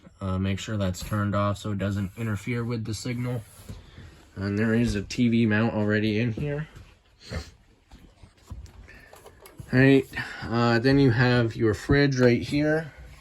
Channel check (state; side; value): identical; both; correlation 1.00